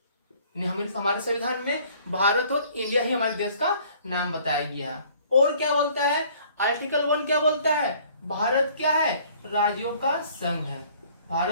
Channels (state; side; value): inverted; both; correlation -0.56